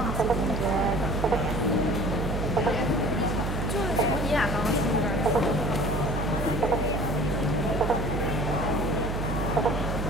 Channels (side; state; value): right; noise; hum, 1 dB below the sound